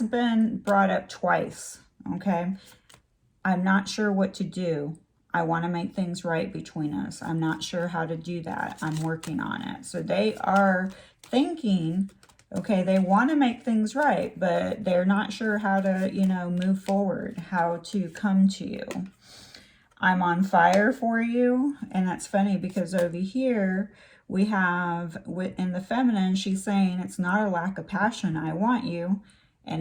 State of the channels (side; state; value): both; identical; correlation 1.00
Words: been brought up twice. Okay, I'm not sure what to do. I want to make things right between us. I'm not sure how to do that. I'm working on it. So they are thinking, okay, they want to make things right, but they're not sure how to, you know, move forward, how to come to you. I'm on fire for you. And that's funny because over here we have, in the feminine, she's saying it's not a lack of passion. I want you.